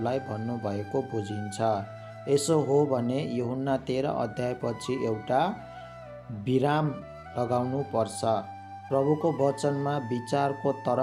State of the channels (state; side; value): identical; both; correlation 1.00